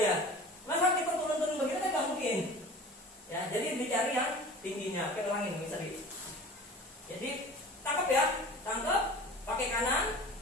Masa kita turun-turun begitu kan nggak mungkin. Ya, jadi dicari yang tingginya. Oke, ulangin Bang Seri. Jadi tangkap ya, tangkap pakai kanan.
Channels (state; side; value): normal; both; correlation 0.40